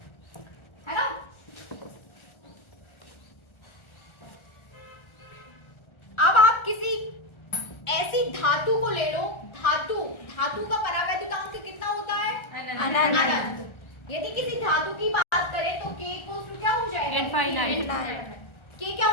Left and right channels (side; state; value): right; late; 1.3 ms